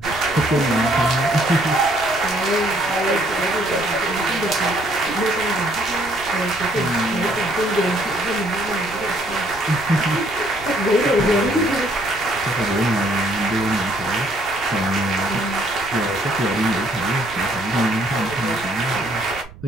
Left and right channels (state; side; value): noise; right; rumble, 19 dB below the sound